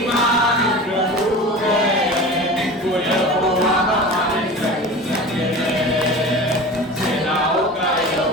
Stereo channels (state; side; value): normal; both; correlation 0.34